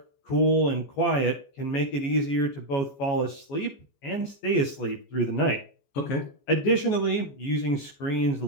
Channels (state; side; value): late; right; 14 ms